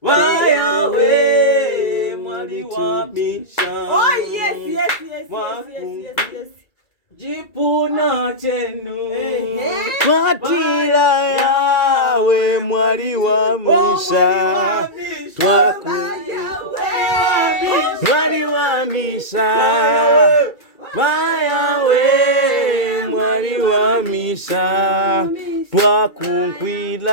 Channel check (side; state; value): right; late; 2.3 ms